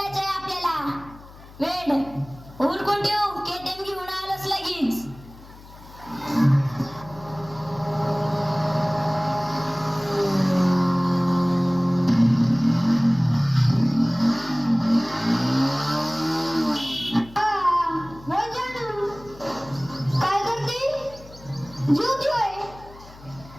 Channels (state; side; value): noise; left; hum, 20 dB below the sound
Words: आपल्याला. वेड उरकून ठेव, केटीएम घेऊन आलोच लगेच. काय करते? झोपली होय?